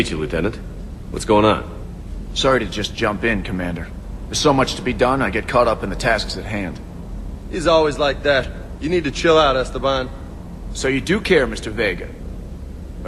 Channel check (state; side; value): identical; both; correlation 1.00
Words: you, Lieutenant. What's going on? Sorry to just jump in, Commander. There's so much to be done, I get caught up in the tasks at hand. He's always like that. You need to chill out, Esteban. So you do care, Mr. Vega?